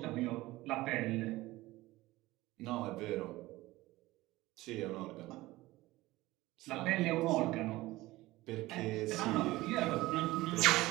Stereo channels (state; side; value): quieter; left; 18.5 dB